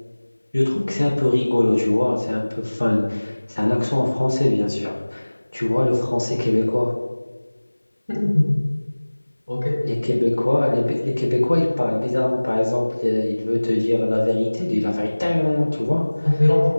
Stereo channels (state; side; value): inverted; both; correlation -1.00